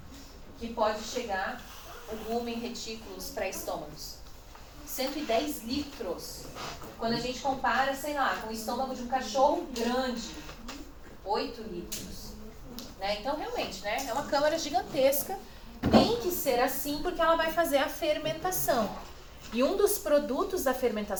que pode chegar o rumen, retículo, os pré-estômagos. 110 litros. Quando a gente compara, sei lá, com o estômago de um cachorro grande, 8 litros. Né? Então, realmente, né? É uma câmara gigantesca. Tem que ser assim porque ela vai fazer a fermentação. E um dos produtos da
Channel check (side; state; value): both; identical; correlation 1.00